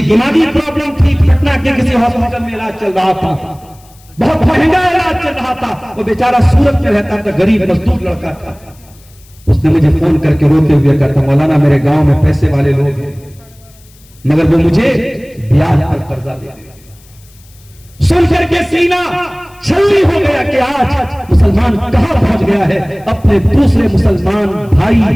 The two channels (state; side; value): noise; left; hiss, 28 dB below the sound